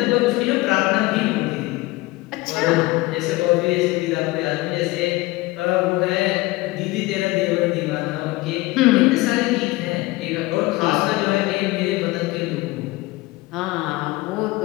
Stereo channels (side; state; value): right; quieter; 20.7 dB